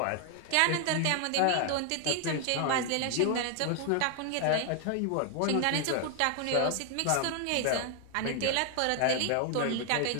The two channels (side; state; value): both; different; correlation 0.00